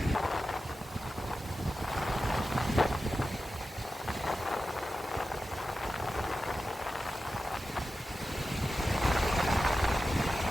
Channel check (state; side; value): normal; both; correlation 0.92